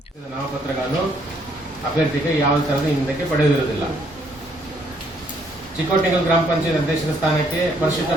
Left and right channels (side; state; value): both; normal; correlation 0.68